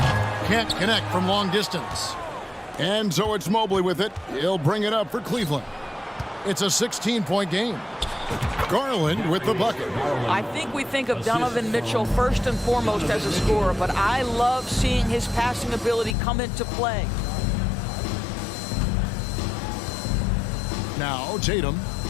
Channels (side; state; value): right; drops out; at 16.2 s